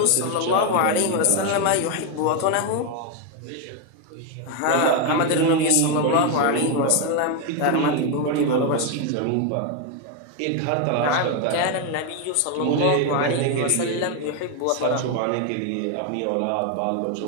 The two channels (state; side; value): different; both; correlation 0.01